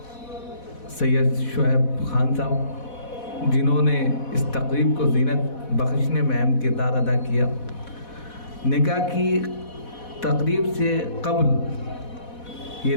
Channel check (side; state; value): right; late; 4.1 ms